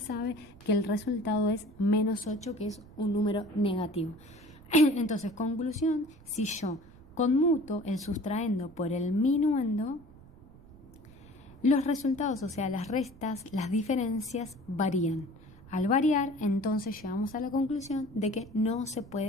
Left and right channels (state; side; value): noise; right; rumble, 22 dB below the sound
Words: que el resultado es menos 8, que es un número negativo. Entonces, conclusión, si yo conmuto el sustraendo por el minuendo, los resultados, o sea, las restas, las diferencias varían. Al variar, entonces llegamos a la conclusión de que no se